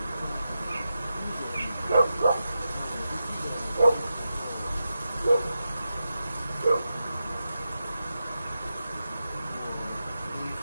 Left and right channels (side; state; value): both; inverted; correlation -0.89